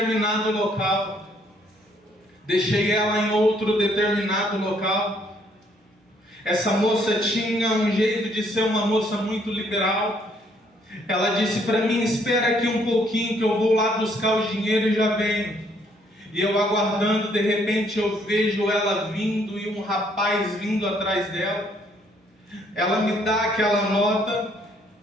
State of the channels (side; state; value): both; normal; correlation 0.67